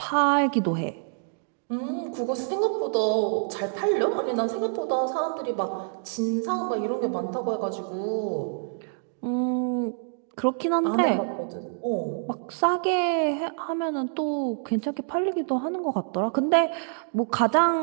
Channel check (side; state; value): left; silent; digital silence